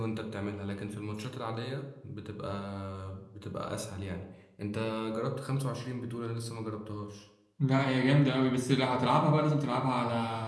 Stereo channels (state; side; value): identical; both; correlation 1.00